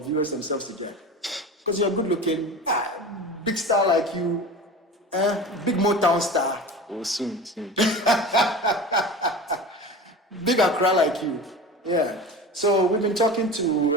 viewers themselves to get. Because you're good looking, big star like you, big Motown star. Oh, soon. Big Accra like you. Yeah. So we've been talking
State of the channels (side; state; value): both; normal; correlation 0.33